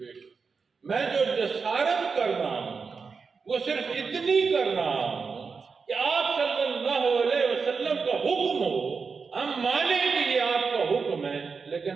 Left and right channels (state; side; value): quieter; left; 5.1 dB